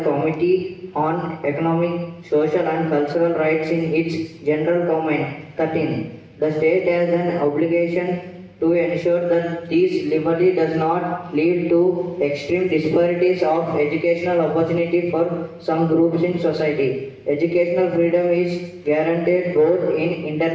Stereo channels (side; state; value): both; identical; correlation 1.00